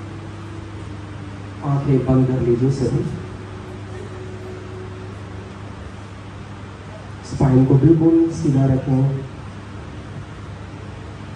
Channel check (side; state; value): both; identical; correlation 1.00